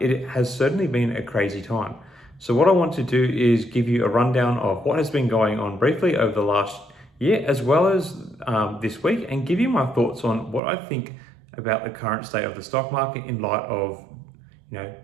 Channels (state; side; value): drops out; left; at 10.6 s